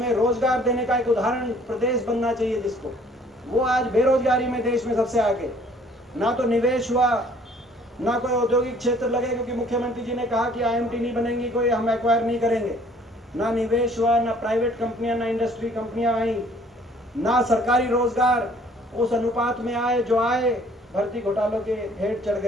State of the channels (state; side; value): normal; both; correlation 0.57